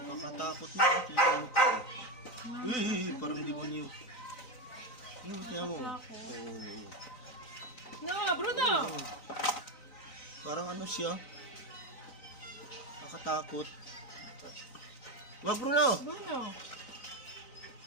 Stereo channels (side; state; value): right; late; 3.9 ms